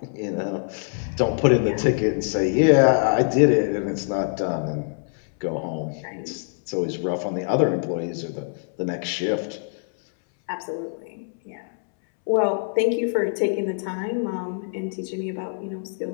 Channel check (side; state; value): right; silent; 62 dB below the other